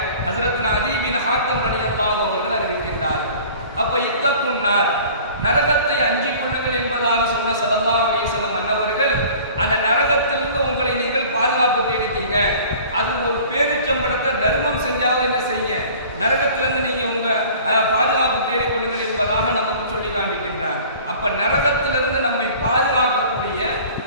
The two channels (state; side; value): inverted; both; correlation -0.46